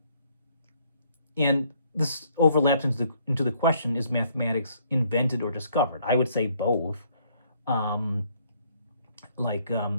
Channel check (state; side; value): inverted; both; correlation -0.66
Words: this overlaps into the question: is mathematics invented or discovered? I would say both.